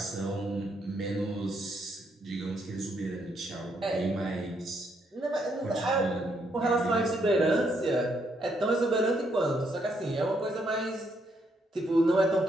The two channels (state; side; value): normal; both; correlation 0.75